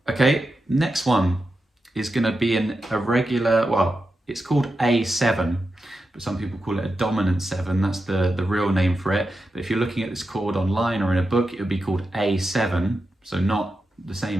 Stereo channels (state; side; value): normal; both; correlation 0.89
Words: Okay, next one is going to be a regular, well, it's called A7, but some people call it a dominant 7. That's the real name for it. But if you're looking at this chord online or in a book, it would be called A7. So not the